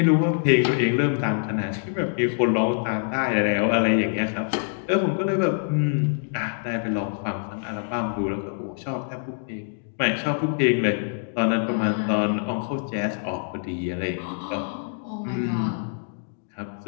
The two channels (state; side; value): silent; right; 61 dB below the other